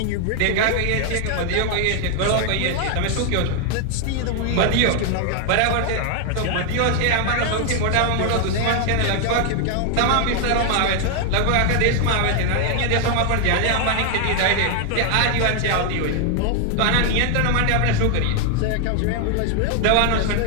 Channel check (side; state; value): both; different; correlation 0.00